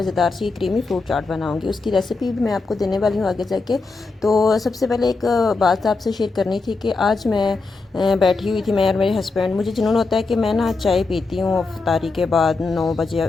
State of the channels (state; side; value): quieter; right; 3.9 dB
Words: सी क्रीमी फ्रूट चाट बनाऊंगी, उसकी रेसिपी भी मैं आपको देने वाली हूँ आगे जाके। तो सबसे पहले एक बात आपसे शेयर करनी थी कि आज मैं बैठी हुई थी, मैं और मेरे हस्बैंड। मुझे जुनून होता है कि मैं ना चाय पीती हूँ अफ्तारी के बाद, 9 बजे